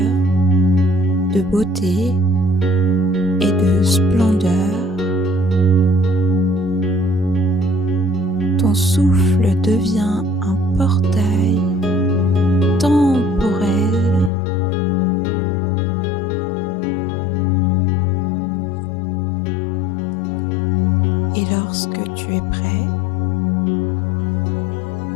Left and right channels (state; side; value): drops out; right; at 14.3 s